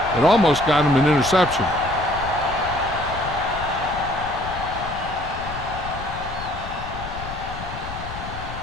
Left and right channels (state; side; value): noise; left; rumble, 10 dB below the sound